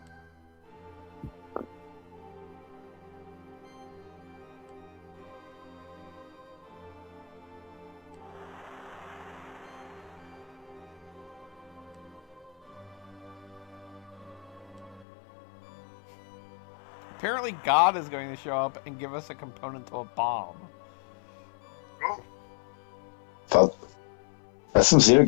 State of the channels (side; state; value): right; drops out; at 15.1 s